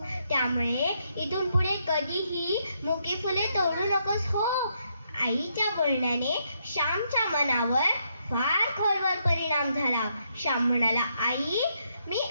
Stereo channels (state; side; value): inverted; both; correlation -0.77